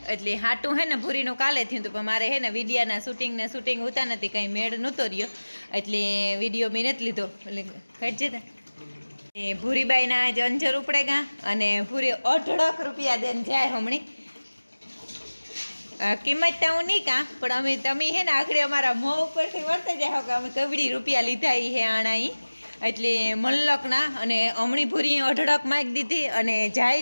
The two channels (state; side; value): inverted; both; correlation -1.00